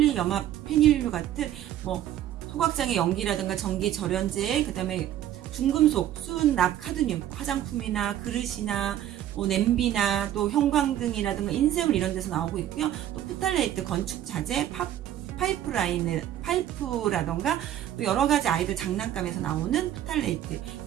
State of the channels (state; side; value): quieter; left; 11.8 dB